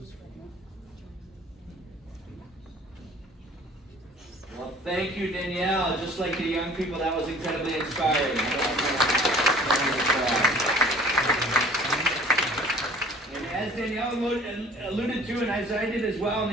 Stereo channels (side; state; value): both; normal; correlation 0.50